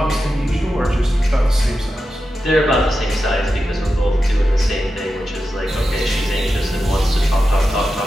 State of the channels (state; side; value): normal; both; correlation 0.91